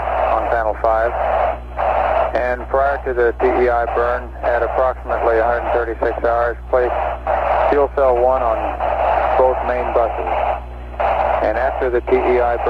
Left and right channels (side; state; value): both; identical; correlation 1.00